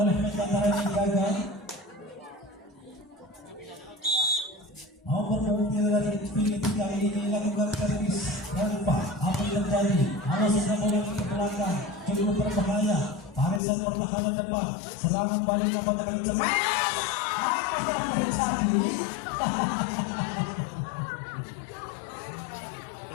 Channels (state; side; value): drops out; right; at 13.6 s